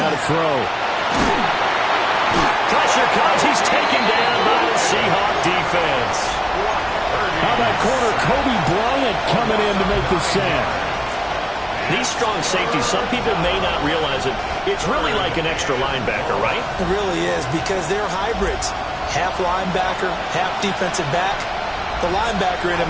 to throw. Pressure comes. He's taken down by the Seahawk defense. How about corner Kobe Bryant coming in to make the sack? These strong safeties, some people may not realize it. It's really like an extra linebacker, right? It really is, because they're hybrids. Half linebacker, half defensive back. The linebacker in him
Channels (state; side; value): identical; both; correlation 1.00